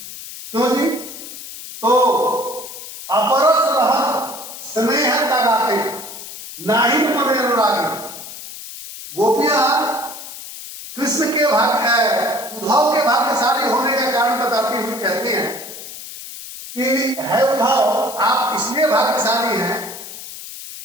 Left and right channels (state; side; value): noise; left; hiss, 12 dB below the sound